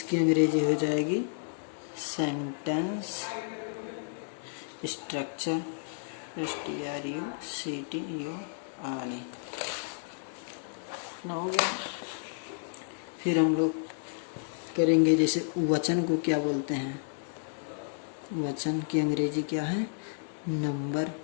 अंग्रेजी हो जाएगी सेंटेंस स्ट्रक्चर, STRUCTURE। ना हो गया। फिर हम लोग करेंगे जैसे वचन को क्या बोलते हैं, वचन की अंग्रेजी क्या है, नंबर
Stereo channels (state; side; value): silent; right; digital silence